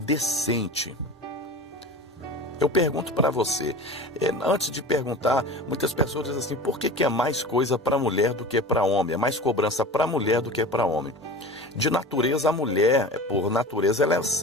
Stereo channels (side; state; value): both; normal; correlation 0.34